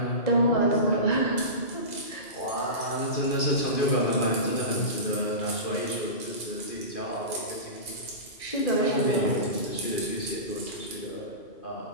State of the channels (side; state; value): right; late; 2.5 ms